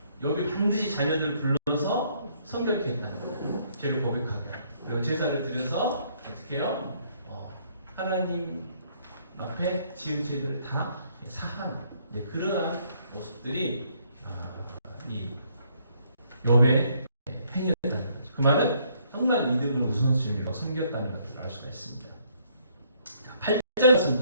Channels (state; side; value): inverted; both; correlation -0.67